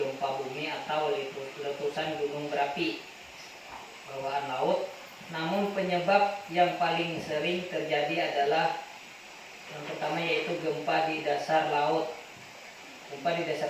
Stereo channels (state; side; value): identical; both; correlation 1.00